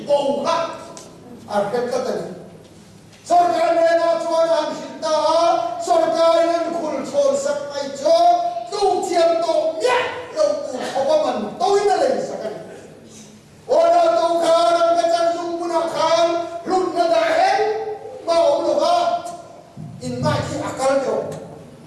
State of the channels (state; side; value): identical; both; correlation 1.00